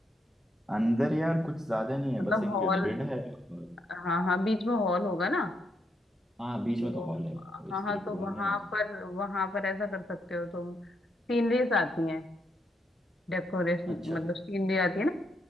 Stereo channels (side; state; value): both; normal; correlation 0.78